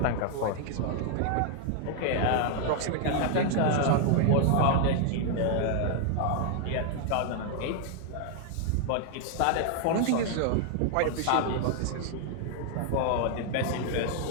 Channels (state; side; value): different; both; correlation 0.00